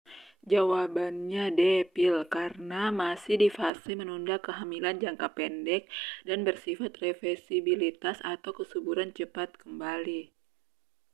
Jawabannya D. pil karena masih di fase menunda kehamilan jangka pendek dan bersifat reversibilitas atau kesuburan cepat kembali.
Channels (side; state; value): left; drops out; at 3.7 s